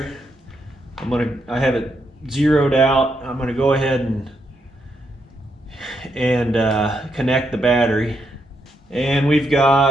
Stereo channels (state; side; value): normal; both; correlation 0.80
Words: I have it zeroed out. I'm going to go ahead and connect the battery. And we've